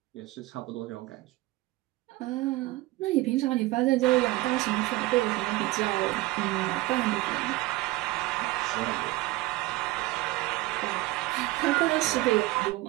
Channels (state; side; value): quieter; left; 19.1 dB